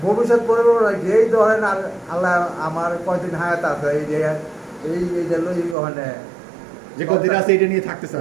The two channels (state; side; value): drops out; left; at 5.8 s